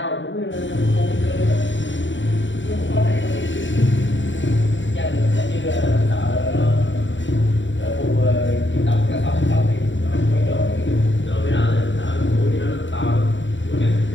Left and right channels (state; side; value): late; right; 0.54 ms